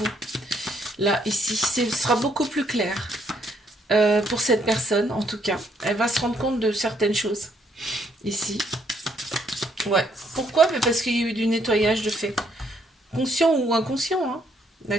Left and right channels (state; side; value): normal; both; correlation 0.70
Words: Là, ici, ce sera beaucoup plus clair pour cette personne, en tout cas. Elle va se rendre compte de certaines choses. Ici. Ouais. Pourquoi? Parce qu'il y a eu du nettoyage de fait. Conscient ou inconscient, hein.